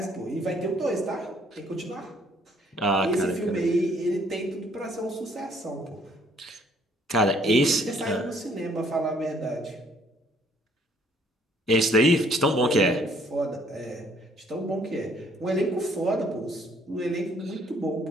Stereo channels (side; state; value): both; normal; correlation 0.63